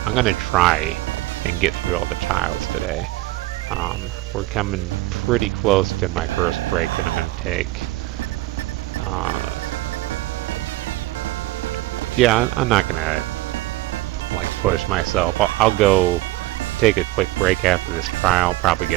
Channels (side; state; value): left; quieter; 17.9 dB